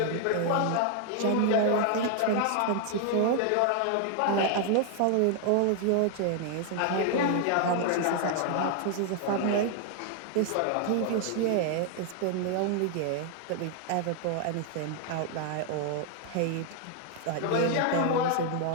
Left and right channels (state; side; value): different; both; correlation 0.00